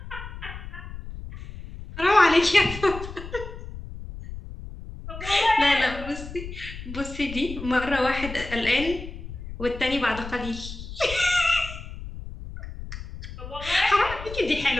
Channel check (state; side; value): noise; left; rumble, 11 dB below the sound